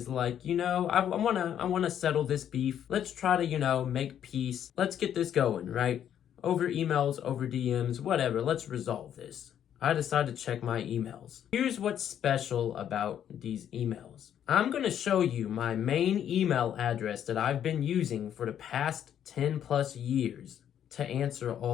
like, I wanna settle this beef. Let's try to, make peace. Let's get this going, right? Over emails, over DMs, whatever. Let's resolve this. I decided to check my emails. Here's what's special about these emails. I'm going to show you my main email address that I've been using for the past 10 plus years to answer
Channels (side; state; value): right; quieter; 9.8 dB